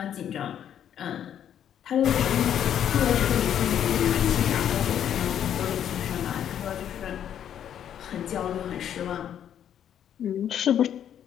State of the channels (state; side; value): quieter; right; 9.8 dB